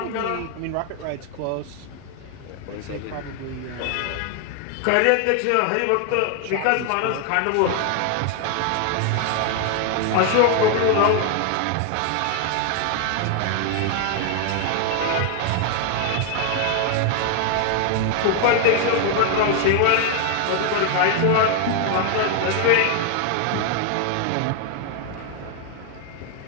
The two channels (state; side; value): different; both; correlation 0.00